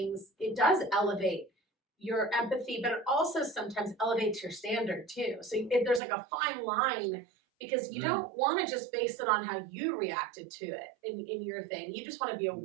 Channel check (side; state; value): left; drops out; at 6.0 s